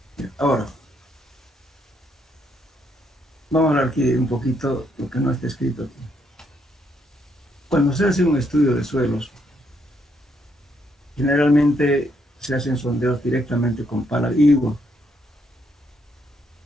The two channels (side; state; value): both; normal; correlation 0.74